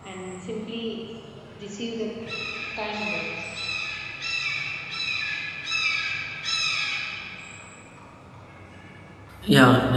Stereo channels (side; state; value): both; identical; correlation 1.00